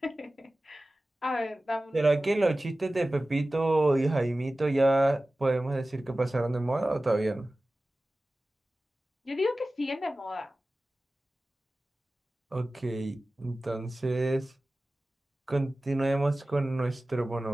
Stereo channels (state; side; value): normal; both; correlation 0.96